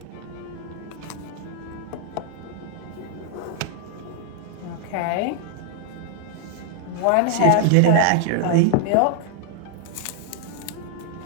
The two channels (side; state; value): both; different; correlation 0.00